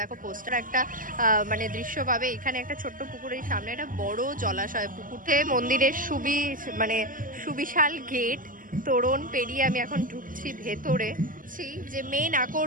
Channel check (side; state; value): left; late; 0.40 ms